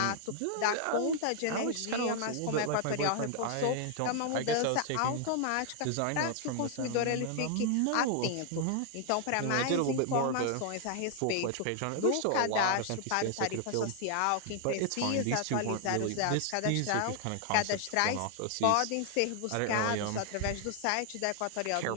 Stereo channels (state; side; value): different; both; correlation 0.00